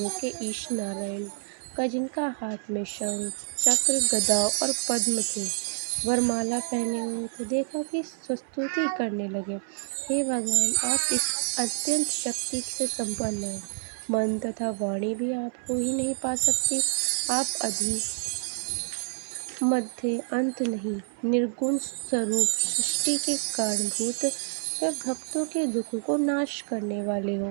के ईश नारायण का, जिनका हाथ में शंख चक्र गदा और पद्म थे, वरमाला पहने हुए थे, देखा कि स्तुति करने लगे, हे भगवान, आप इस अत्यंत शक्ति से संपन्न हैं। मन तथा वाणी भी आपको ही नहीं पा सकती। आप अधि मध्य अंत नहीं, निर्गुण स्वरूप, सृष्टि के कारणभूत व भक्तों के दुख को नाश करने वाले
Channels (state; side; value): silent; left; 59 dB below the other